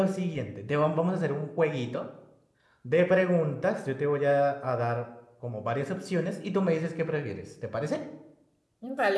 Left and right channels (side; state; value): both; identical; correlation 1.00